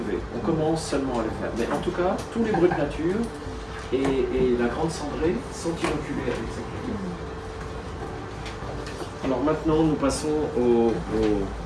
On commence seulement à le faire. Mais en tout cas, tous les Brut Nature et la Grande Cendrée sont inoculés avec cette levure. Alors maintenant, nous passons au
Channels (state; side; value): identical; both; correlation 1.00